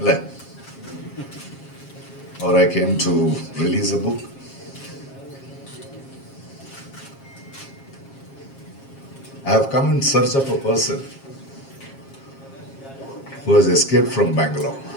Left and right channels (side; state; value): right; late; 7.4 ms